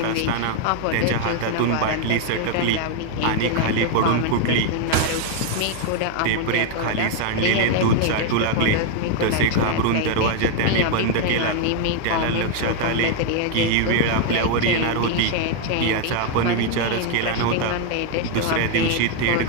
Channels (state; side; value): different; both; correlation 0.01